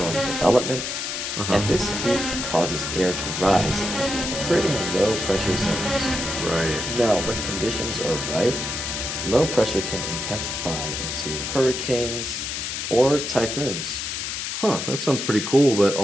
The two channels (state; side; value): noise; left; hiss, 4 dB below the sound